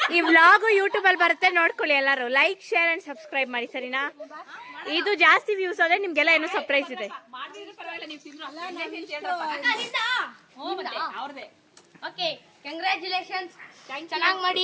ಈ ವ್ಲಾಗು ಯೂಟ್ಯೂಬ್ ಅಲ್ಲಿ ಬರುತ್ತೆ, ನೋಡ್ಕೊಳ್ಳಿ ಎಲ್ಲರೂ. ಲೈಕ್, ಶೇರ್ ಅಂಡ್ ಸಬ್ಸ್ಕ್ರೈಬ್ ಮಾಡಿ, ಸರಿನಾ? ಇದು ಜಾಸ್ತಿ ವ್ಯೂಸ್ ಆದ್ರೆ ನಿಮ್ಗೆಲ್ಲ ಏನೋ ಸರ್ಪ್ರೈಸ್ ಇದೆ. ಅವ್ರದೇ. Okay, congratulations. ಚೆನ್ನಾಗಿ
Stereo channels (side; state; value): both; identical; correlation 1.00